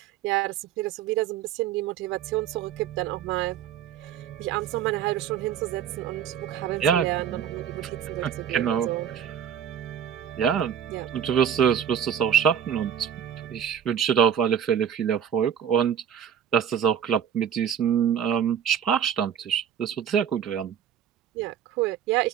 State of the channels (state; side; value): quieter; left; 8.9 dB